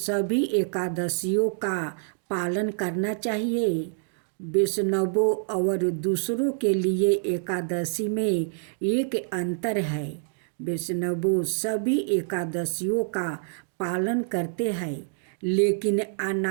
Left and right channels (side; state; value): left; silent; digital silence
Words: एकादशियों का पालन करना चाहिए? वैष्णवों और दूसरों के लिए एकादशी में एक अंतर है। वैष्णव सभी एकादशियों का पालन करते हैं, लेकिन